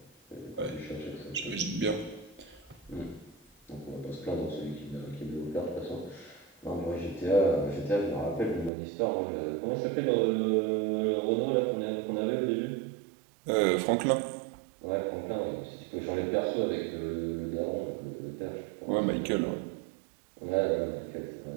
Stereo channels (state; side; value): drops out; left; at 8.7 s